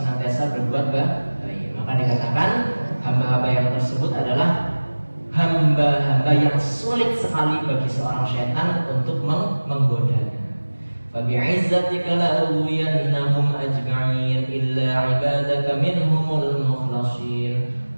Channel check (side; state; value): both; inverted; correlation -1.00